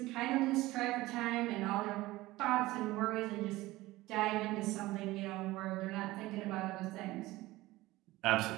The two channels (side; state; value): left; quieter; 18.5 dB